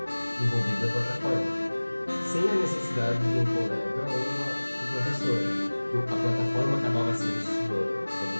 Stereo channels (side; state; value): both; inverted; correlation -1.00